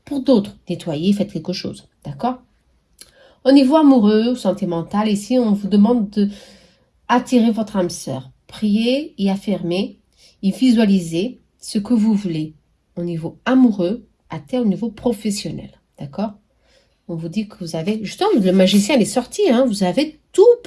Pour d'autres, nettoyez, faites quelque chose. D'accord? Au niveau amoureux, santé mentale, ici, on vous demande de attirer votre âme sœur. Priez et affirmez et visualisez ce que vous voulez au niveau amoureux, au niveau professionnel. D'accord? On vous dit que vous avez... Justement, le magicien, il est sorti. Hein, vous avez tout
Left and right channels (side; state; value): both; identical; correlation 1.00